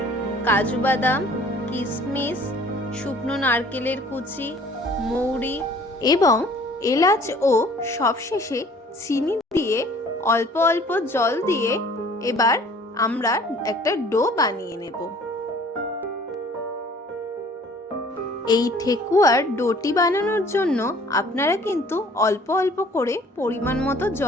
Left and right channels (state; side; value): normal; both; correlation 0.53